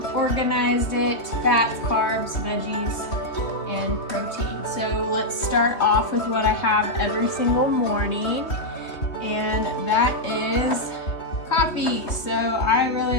organized it: fats, carbs, veggies, and protein. So let's start off with what I have every single morning, and that is coffee. So I really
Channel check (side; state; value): right; late; 3.1 ms